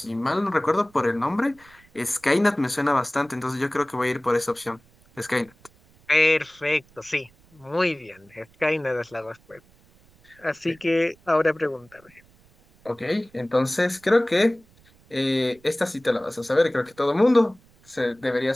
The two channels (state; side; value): noise; right; rumble, 30 dB below the sound